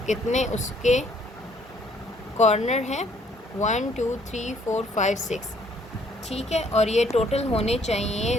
कितने उसके कॉर्नर हैं, 1 2 3 4 5 6, ठीक है। और ये टोटल होने चाहिए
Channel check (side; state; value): both; normal; correlation 0.64